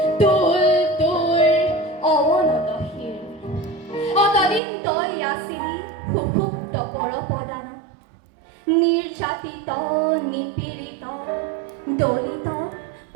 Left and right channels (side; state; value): left; drops out; at 4.6 s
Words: তোল তোৰ অৱনত শিৰ। অতদিন তই আছিলি সুষুপ্ত পৰপদান, নিৰ্যাতিত নিপীড়িত দলিত